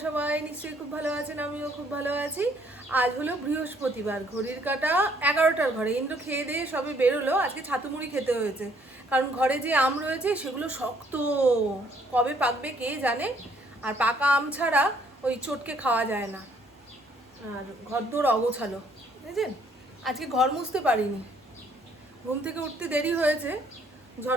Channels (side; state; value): both; normal; correlation 0.64